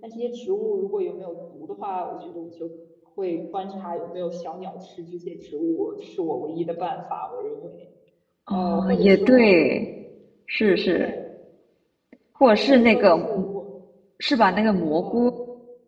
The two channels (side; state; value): both; identical; correlation 1.00